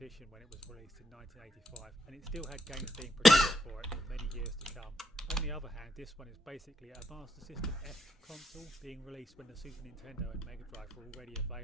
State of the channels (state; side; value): normal; both; correlation 0.75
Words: when it was released in 1985, and it still had games being produced for it for many years to come. On the other hand, this one is basically a Master System F console being released when the Super Nintendo and Mega Drive were already